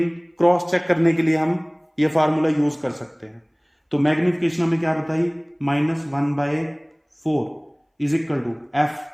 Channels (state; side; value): identical; both; correlation 1.00